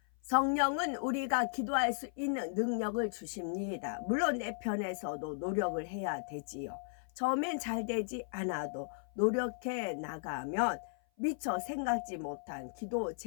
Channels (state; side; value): silent; right; 54 dB below the other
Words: 성령은 우리가 기도할 수 있는 능력을 주십니다. 물론 내 편에서도 노력을 해야 되지요. 처음엔 잘 되지 않아도 노력해 나가면 미처 생각지 못한 기도